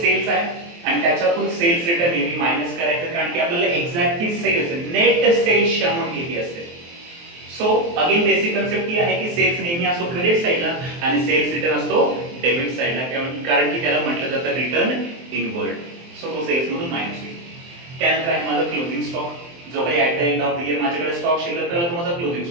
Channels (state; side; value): late; left; 23 ms